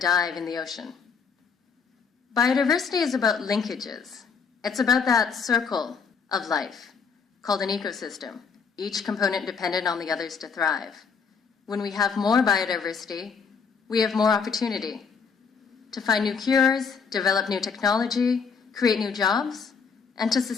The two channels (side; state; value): right; quieter; 5.8 dB